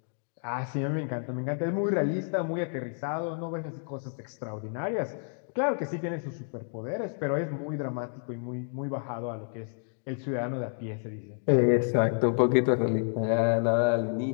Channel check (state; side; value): silent; right; 58 dB below the other